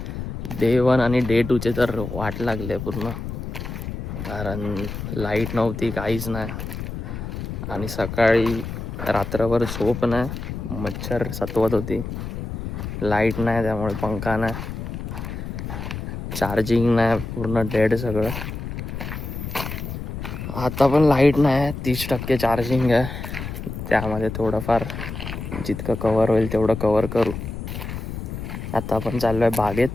डे 1 आणि डे 2चे तर वाट लागले पूर्ण, कारण लाईट नव्हती, काहीच नाही. आणि सकाळी रात्रभर झोप नाही, मच्छर सतवत होती. लाईट नाही त्यामुळे पंखा नाही, चार्जिंग नाही, पूर्ण डेड सगळं. आता पण लाईट नाही, 30% चार्जिंग आहे. त्यामध्ये थोडंफार जितकं कवर होईल तेवढं कवर करू. आता आपण चाललो आहे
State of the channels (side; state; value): left; noise; rumble, 7 dB below the sound